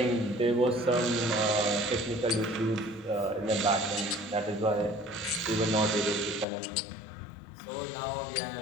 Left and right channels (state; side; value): drops out; right; at 6.5 s